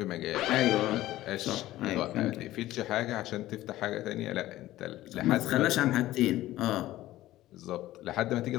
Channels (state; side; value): quieter; right; 15.4 dB